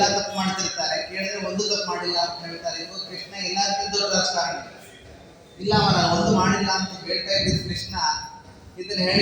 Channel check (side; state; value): both; identical; correlation 1.00